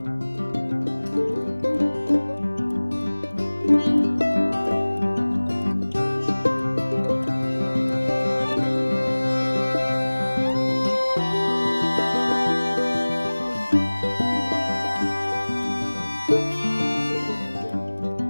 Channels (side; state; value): both; inverted; correlation -1.00